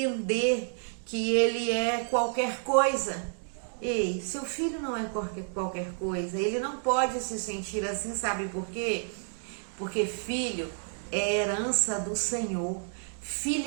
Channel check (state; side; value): silent; left; digital silence